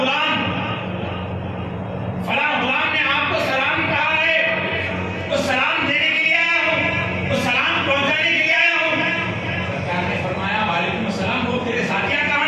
فلاں غلام نے آپ کو سلام کہا ہے، تو سلام دینے کے لیے آیا ہوں، تو سلام پہنچانے کے لیے آیا ہوں۔ سرکار نے فرمایا وعلیکم السلام، وہ تیرے ساتھیاں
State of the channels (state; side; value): identical; both; correlation 1.00